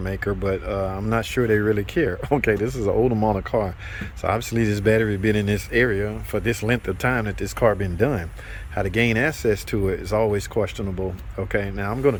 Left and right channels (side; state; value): both; identical; correlation 1.00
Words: but I'm not sure they really care. Okay, this is an older model car, so obviously this battery been in this area for this length of time that this car been done. How to gain access to it is always questionable. Okay, now I'm gonna